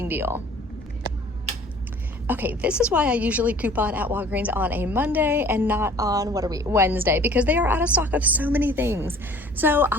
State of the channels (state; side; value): normal; both; correlation 0.50